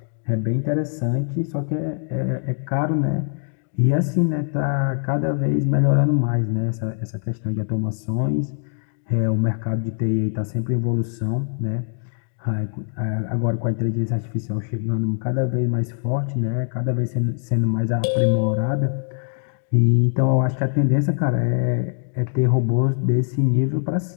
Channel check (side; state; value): right; silent; 57 dB below the other